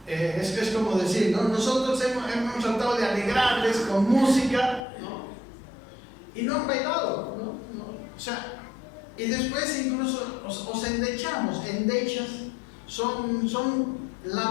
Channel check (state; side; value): drops out; right; at 4.8 s